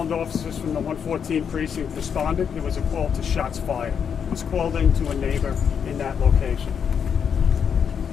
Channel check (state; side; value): quieter; right; 7.3 dB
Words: officers from the 114 precinct responded. It was a call to shots fired. It was called in to a neighbor in that location.